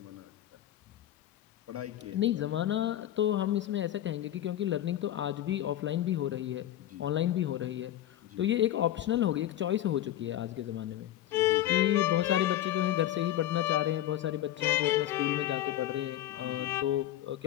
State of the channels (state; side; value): quieter; right; 12.7 dB